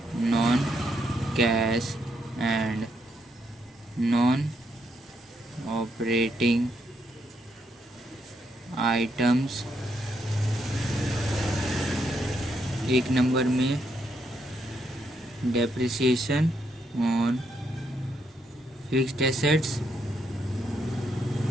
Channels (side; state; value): both; normal; correlation 0.77